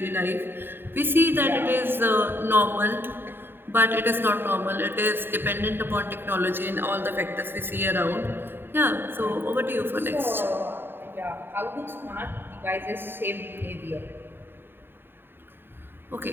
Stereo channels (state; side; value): late; left; 0.10 ms